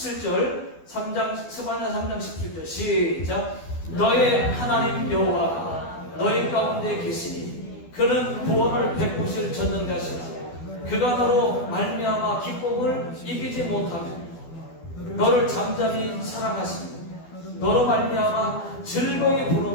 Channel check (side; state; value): right; late; 12 ms